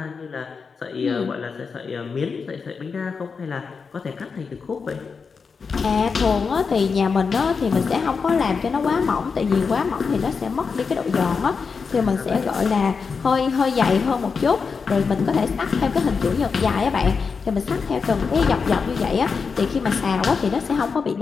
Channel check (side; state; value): right; quieter; 5.3 dB